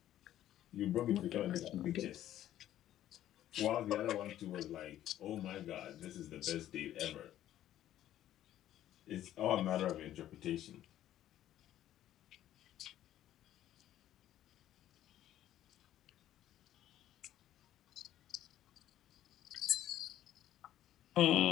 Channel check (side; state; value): right; quieter; 12.5 dB